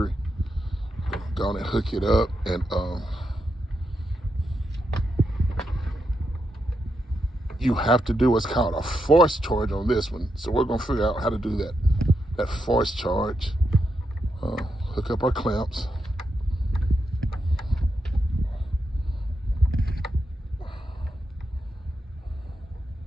Go on and hook it up, and you have to do what's called a force charge on this one. So we're gonna figure out how to do that force charge. Hook up our clamps.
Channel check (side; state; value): both; normal; correlation 0.84